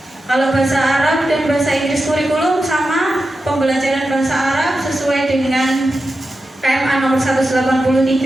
Kalau bahasa Arab dan bahasa Inggris kurikulum sama, pembelajaran bahasa Arab sesuai dengan KMA nomor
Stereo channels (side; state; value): both; normal; correlation 0.91